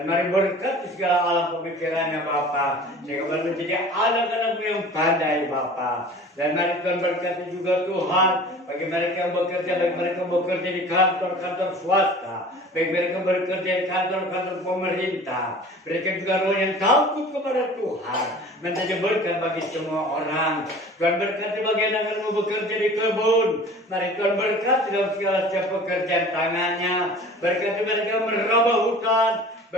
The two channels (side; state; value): both; normal; correlation 0.43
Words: mari berkati segala alam pemikirannya Bapak. Sehingga menjadi anak-anak yang pandai Bapak. Dan mari Tuhan berkati juga Tuhan. Bagi mereka yang bekerja, bagi mereka yang bekerja di kantor-kantor swasta. Baik mereka bekerja di kantor-kantor pemerintah. Mereka juga roh yang takut kepada Tuhan. Menjadi berkat bagi semua orang. Tuhan berkati bagi anak-anakmu bekerja di kebun. Mari Tuhan berkati dalam segala setiap pekerjaan tangannya. Berkati mereka meraba hutan.